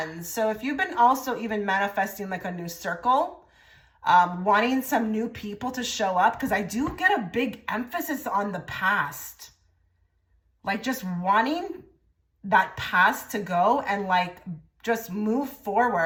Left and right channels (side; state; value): both; identical; correlation 1.00